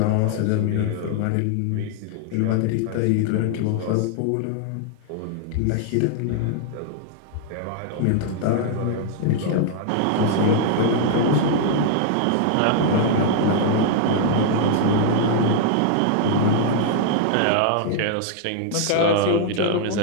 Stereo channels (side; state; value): both; different; correlation 0.00